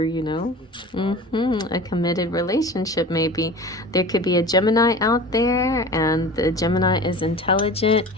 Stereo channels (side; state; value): both; normal; correlation 0.37